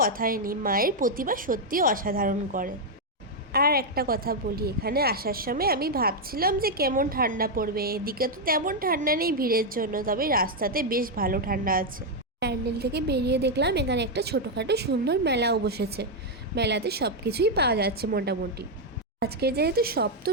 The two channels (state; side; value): normal; both; correlation 0.01